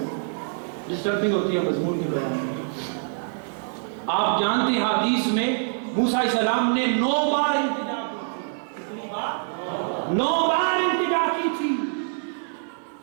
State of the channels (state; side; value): silent; left; digital silence